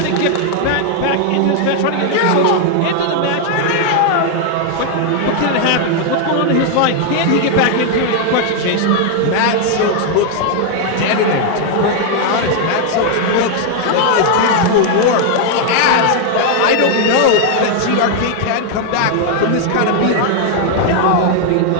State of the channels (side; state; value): both; different; correlation 0.00